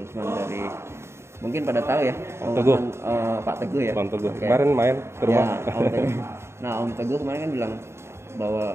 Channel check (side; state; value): left; late; 0.13 ms